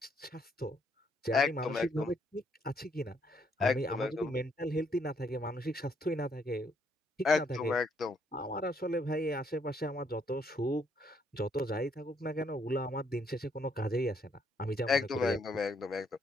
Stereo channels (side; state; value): both; normal; correlation 0.71